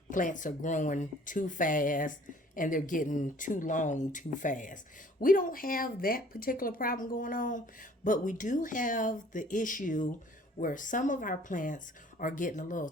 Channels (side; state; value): both; normal; correlation 0.54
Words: plants are growing too fast and they're getting too long too fast. We don't have that particular problem going on, but we do have the issue where some of our plants are getting a little